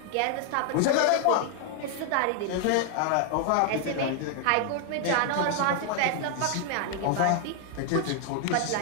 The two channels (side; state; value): both; different; correlation 0.00